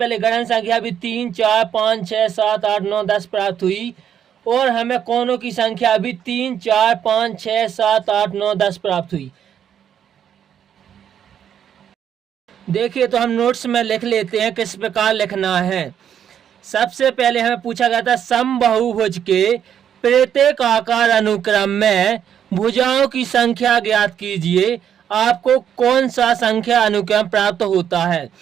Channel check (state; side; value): quieter; left; 9.1 dB